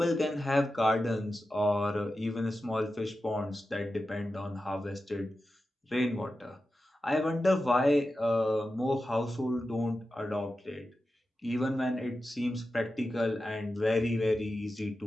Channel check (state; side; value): normal; both; correlation 0.92